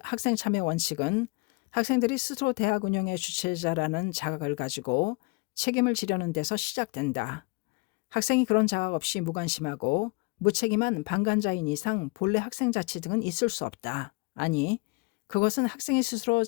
참여 원칙은 학생들이 스스로 대학 운영의 주체자라는 자각을 가지고 책임을 지려는 데서 시작된다. 학생이 그런 자각 없이 무관심하고 무책임한 방관자인 이상 본래 학생자치 등은 있을 수 없다. 아니, 그것은 학생이 스스로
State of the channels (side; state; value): right; quieter; 28.2 dB